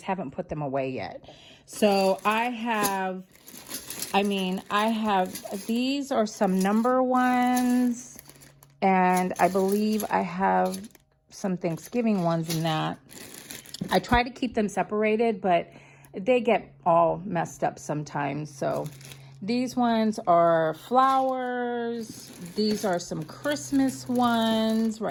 haven't put them away yet. So I have, these are some number ones, and I believe I have some Thanksgiving ones in that. I try to keep them separated, but they get all messed up sometimes. So these ones are flowers. These are some Christmas ones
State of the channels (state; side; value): identical; both; correlation 1.00